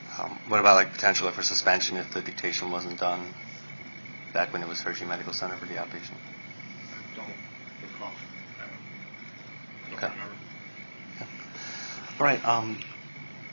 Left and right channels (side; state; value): both; inverted; correlation -1.00